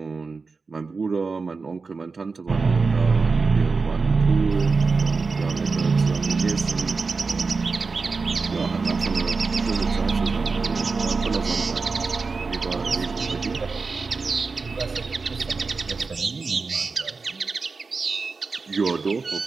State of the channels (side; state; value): left; quieter; 4.4 dB